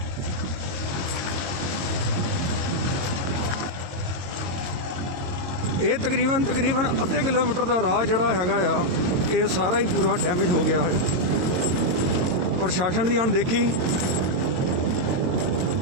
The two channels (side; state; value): left; late; 22 ms